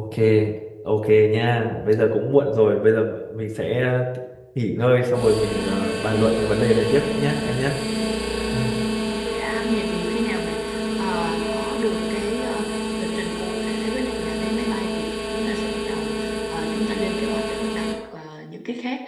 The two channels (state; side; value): identical; both; correlation 1.00